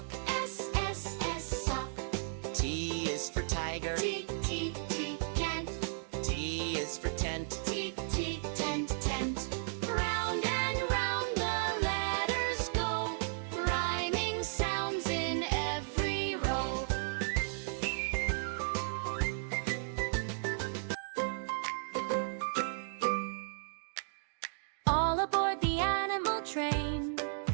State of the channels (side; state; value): left; silent; digital silence